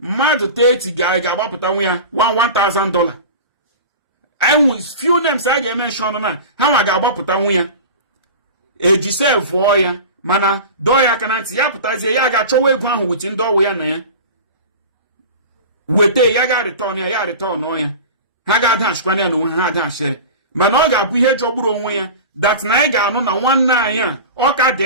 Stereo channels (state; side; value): inverted; both; correlation -0.33